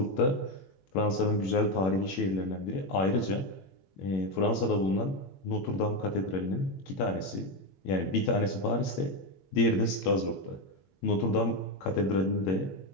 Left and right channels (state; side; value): late; right; 21 ms